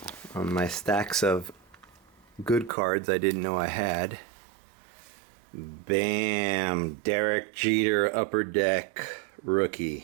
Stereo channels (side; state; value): left; drops out; at 2.7 s